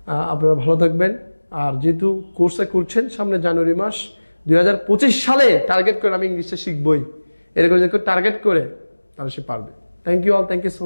আপনারা ভালো থাকবেন। আর যেহেতু কোর্সটা করছেন, সামনে জানুয়ারি মাস 2025 সালে টার্গেট করে আমি ইংলিশটা শিখবই, এরকম যে টার্গেট করে তাহলে সে পারবে। Thank you all, thank you so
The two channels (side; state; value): both; inverted; correlation -1.00